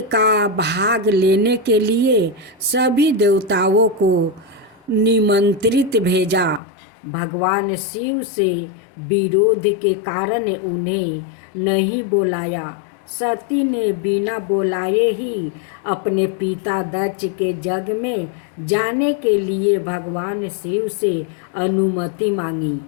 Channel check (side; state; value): right; drops out; at 6.6 s